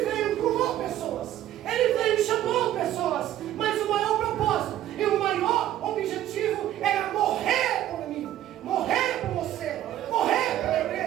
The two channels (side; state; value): left; quieter; 12.7 dB